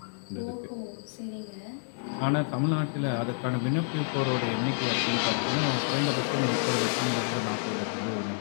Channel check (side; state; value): right; silent; digital silence